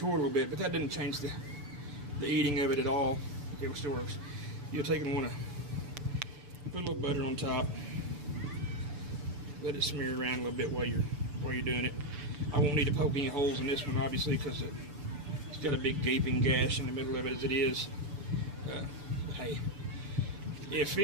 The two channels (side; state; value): left; late; 6.9 ms